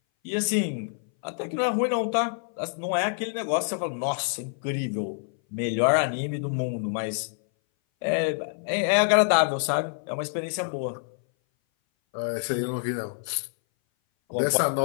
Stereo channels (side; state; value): right; silent; 58 dB below the other